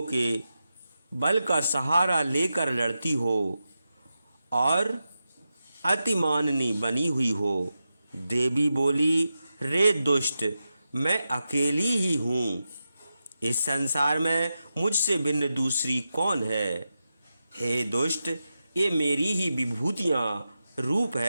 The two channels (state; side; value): inverted; both; correlation -0.90